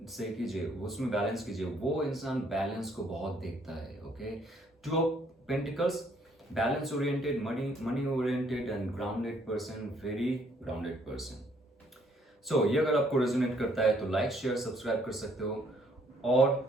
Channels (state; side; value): normal; both; correlation 0.66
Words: सही कीजिए, उसमें बैलेंस कीजिए। वो इंसान बैलेंस को बहुत देखता है। Okay, 2 of pentacles, balance oriented, money oriented and grounded person, very grounded person. So ये अगर आपको रेजोनेट करता है तो लाइक शेयर सब्सक्राइब कर सकते हो।